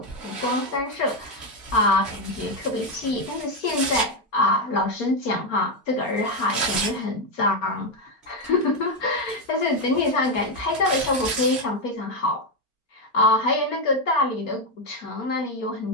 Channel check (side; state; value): both; normal; correlation 0.06